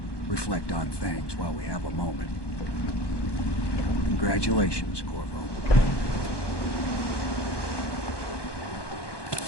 Reflect on things while we have a moment. Congratulations, Corvo.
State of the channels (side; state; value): right; late; 1.2 ms